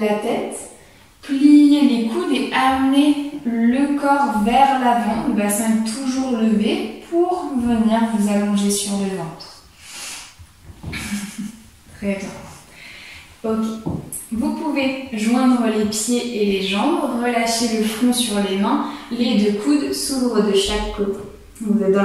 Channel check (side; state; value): both; identical; correlation 1.00